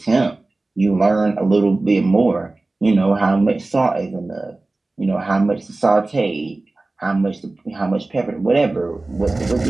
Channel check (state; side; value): quieter; left; 3.1 dB